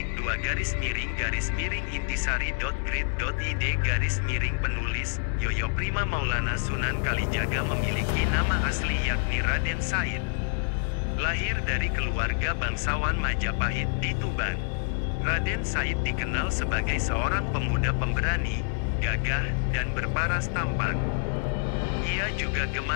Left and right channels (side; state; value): right; silent; digital silence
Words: penulis, Yoyo Prima Maulana. Sunan Kalijaga memiliki nama asli yakni Raden Said. Lahir dari keluarga bangsawan Majapahit di Tuban. Raden Said dikenal sebagai seorang pemuda pemberani, gagah, dan berparas tampan. Ia juga